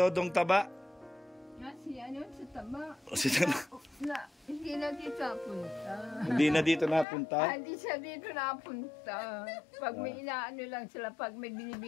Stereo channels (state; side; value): drops out; right; at 7.1 s